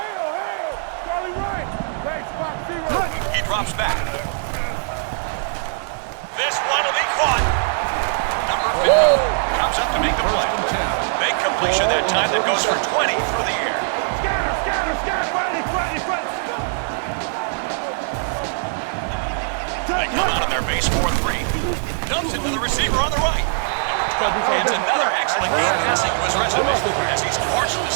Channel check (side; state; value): left; silent; digital silence